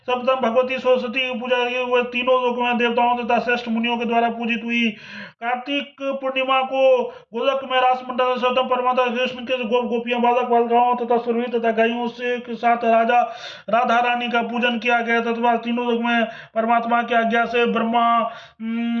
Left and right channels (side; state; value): both; identical; correlation 1.00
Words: भगवती सरस्वती की पूजा की, वह तीनों लोक में देवताओं तथा श्रेष्ठ मुनियों के द्वारा पूजित हुई। कार्तिक पूर्णिमा को गोलक में रास मंडल सर्वप्रथम परमात्मा कृष्ण के गोप गोपियां, बालक बालिकाओं तथा सुरभि तथा गायों से साथ राजा राधा रानी का पूजन किया गया। तथा तीनों लोक में परमात्मा की आज्ञा से ब्रह्मा